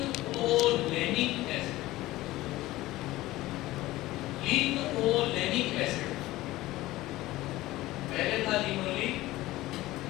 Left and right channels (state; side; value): quieter; right; 17.4 dB